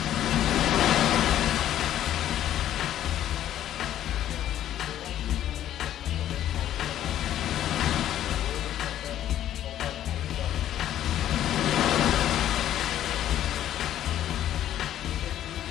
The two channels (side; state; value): right; quieter; 11.8 dB